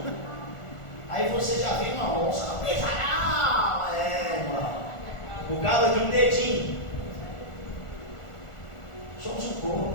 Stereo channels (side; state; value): right; late; 1.4 ms